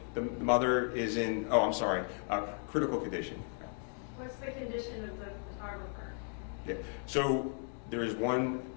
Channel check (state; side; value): silent; right; 54 dB below the other